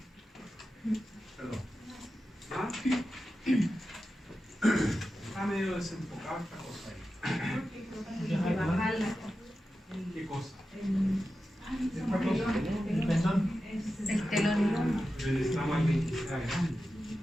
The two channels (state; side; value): normal; both; correlation 0.92